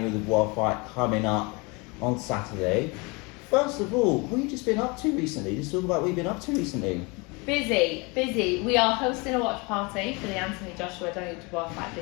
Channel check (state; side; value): quieter; right; 28.0 dB